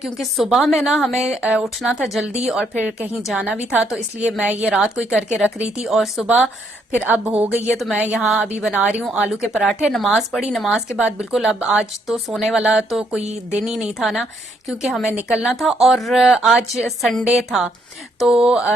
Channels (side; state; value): both; normal; correlation 0.72